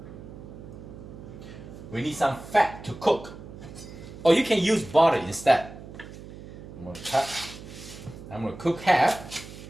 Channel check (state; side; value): noise; right; hum, 14 dB below the sound